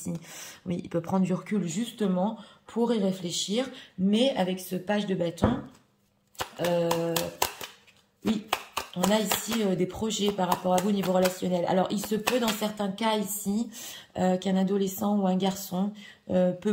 oui, il peut prendre du recul justement pour y réfléchir. Mais avec ce page de bâton, oui, on a ici des projets par rapport à vous au niveau relationnel. Alors, il se peut dans certains cas ici qu'un adolescent ou un garçon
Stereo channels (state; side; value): identical; both; correlation 1.00